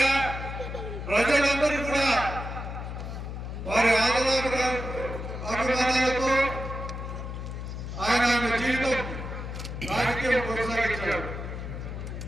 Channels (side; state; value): left; noise; hum, 7 dB below the sound